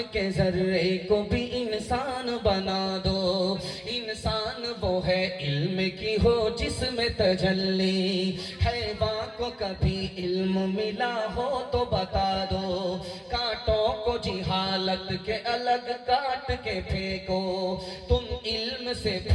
के जर्रे को भी इंसान बना दो। इंसान वो है इल्म की हो जिसमें तजल्ली, हैवान को कभी इल्म मिला हो तो बता दो। कांटों को जिहालत के अलग काट के फेंको, तुम इल्म से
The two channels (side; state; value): both; identical; correlation 1.00